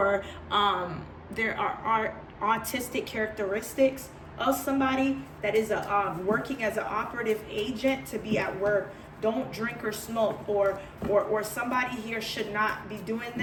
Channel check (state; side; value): identical; both; correlation 1.00